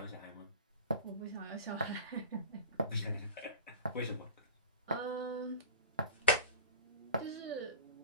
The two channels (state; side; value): inverted; both; correlation -0.33